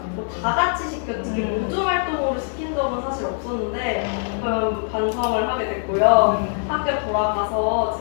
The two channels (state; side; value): silent; right; digital silence